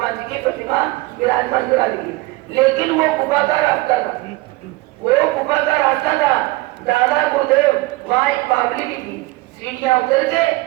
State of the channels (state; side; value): quieter; left; 21.5 dB